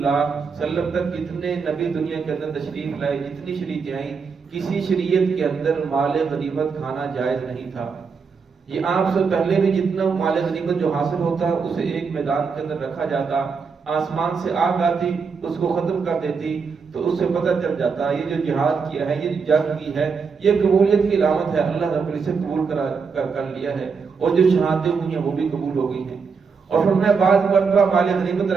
صلی اللہ علیہ وسلم تک جتنے نبی دنیا کے اندر تشریف لائے، جتنی شریعتیں آئیں، کسی شریعت کے اندر مال غنیمت کھانا جائز نہیں تھا۔ یہ آپ سے پہلے بھی جتنا مال غنیمت جو حاصل ہوتا اسے ایک میدان کے اندر رکھا جاتا، آسمان سے آگ آتی اس کو ختم کر دیتی تو اس سے پتہ چل جاتا یہ جو جہاد کیا ہے، یہ جو جنگ کی ہے، یہ قبولیت کی علامت ہے، اللہ رب العزت قبول کر لیا ہے، اور جو شہادتیں ہوئی ہیں وہ بھی قبول ہو گئی ہیں۔ اور فرمایا بعض مرتبہ مال غنیمت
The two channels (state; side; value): quieter; left; 5.4 dB